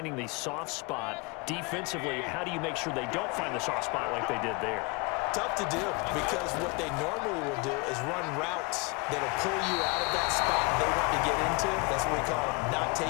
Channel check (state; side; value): quieter; right; 27.3 dB